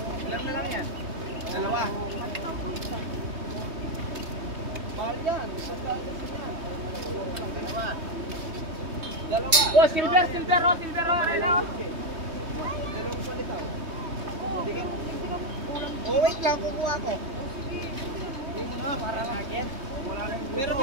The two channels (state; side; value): late; left; 3.2 ms